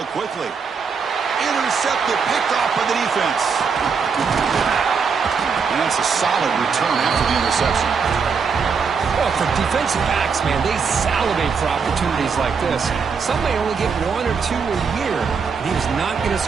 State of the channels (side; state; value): left; quieter; 5.7 dB